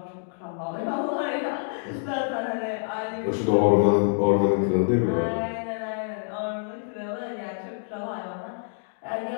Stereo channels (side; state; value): right; silent; digital silence